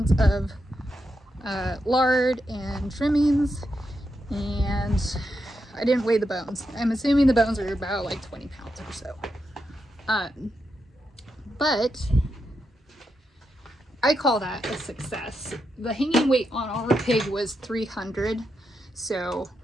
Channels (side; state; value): both; normal; correlation 0.85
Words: of lard and trimmings, and I didn't weigh the bones. I'm assuming the bones are about like 20 pounds or so. But I call that a success. The hanging weight on our pig was 300, so